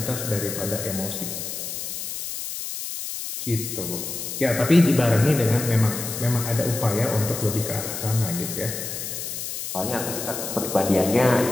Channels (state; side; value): noise; left; hiss, 6 dB below the sound